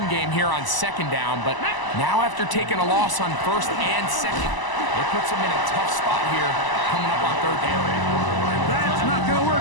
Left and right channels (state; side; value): late; right; 1.0 ms